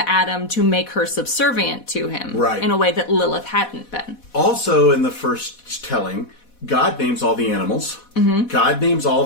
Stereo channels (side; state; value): right; late; 4.1 ms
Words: to make her subservient to him in a way that Lilith hadn't been. Also, in the first telling, God names all the animals. Mm-hmm. God names all